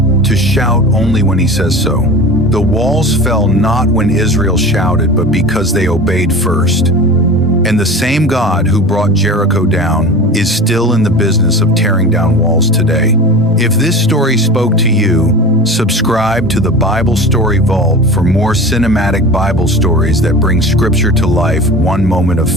to shout only when He says so. The walls fell not when Israel shouted, but because they obeyed first. And the same God who brought Jericho down is still in the business of tearing down walls today. If this story spoke to you, subscribe to the Bible Story Vault for more cinematic Bible stories that bring Scripture to life one moment of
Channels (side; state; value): both; normal; correlation 0.34